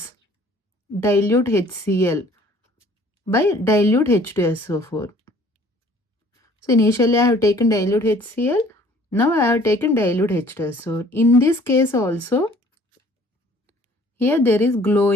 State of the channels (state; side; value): normal; both; correlation 0.55